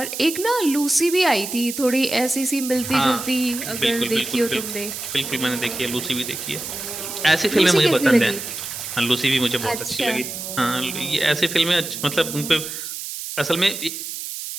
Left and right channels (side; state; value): right; noise; hiss, 7 dB below the sound